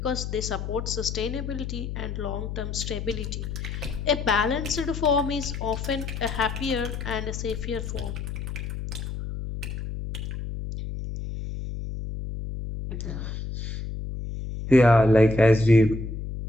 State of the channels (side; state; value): left; noise; hum, 6 dB below the sound